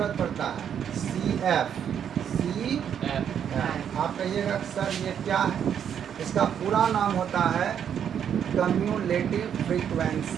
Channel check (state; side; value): quieter; left; 8.6 dB